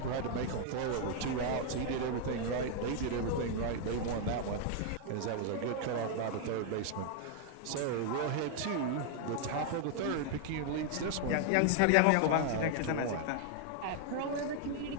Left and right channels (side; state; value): both; different; correlation 0.00